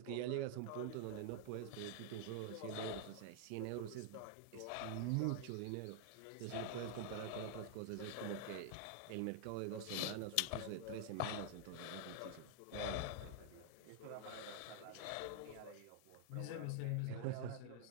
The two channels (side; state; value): both; different; correlation 0.00